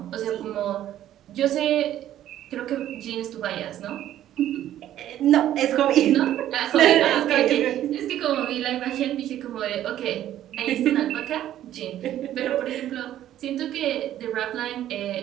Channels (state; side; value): quieter; left; 12.2 dB